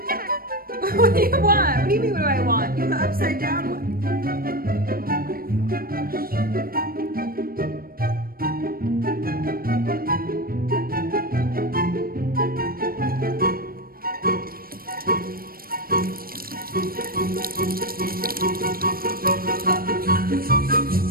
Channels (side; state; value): left; late; 0.43 ms